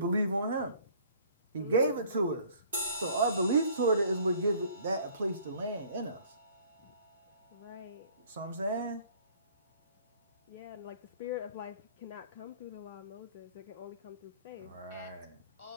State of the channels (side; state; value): both; inverted; correlation -0.54